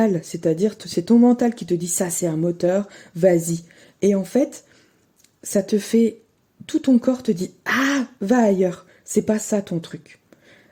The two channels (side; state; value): both; identical; correlation 1.00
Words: c'est-à-dire c'est ton mental qui te dit ça c'est un moteur, vas-y. Et en fait, ça te fait, tout ton corps te dit ah, va ailleurs, c'est pas ça ton truc.